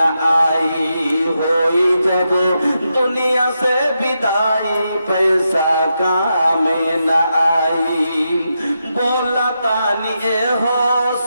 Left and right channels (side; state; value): both; inverted; correlation -0.85